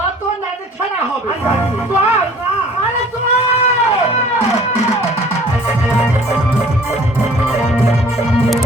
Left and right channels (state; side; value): normal; both; correlation 0.51